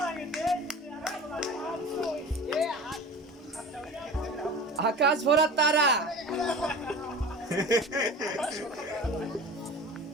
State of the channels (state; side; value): normal; both; correlation 0.36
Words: আকাশ ভরা তারা